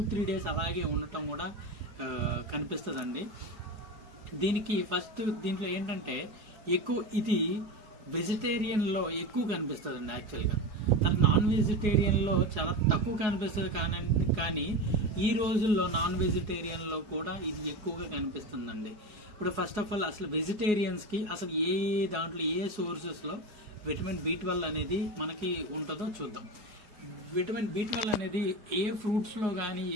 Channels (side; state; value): left; late; 4.8 ms